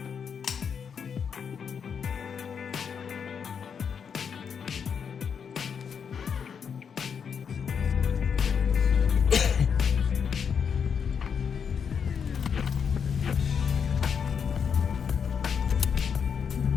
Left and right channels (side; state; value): right; quieter; 6.8 dB